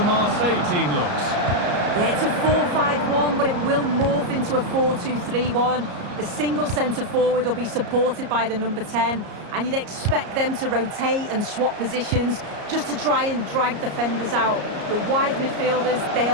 Marseille team looks. Yeah, it's a 4-5-1, but it will morph into a 4-2-3-1. The single centre-forward will be supported by the number 10, and you'd expect them to rotate and swap positions just to try and drag defenders out. The wide midfielders,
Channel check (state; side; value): late; left; 34 ms